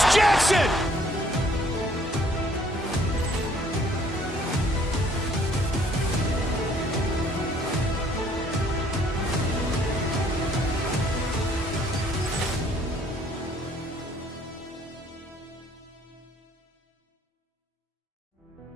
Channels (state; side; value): normal; both; correlation 0.62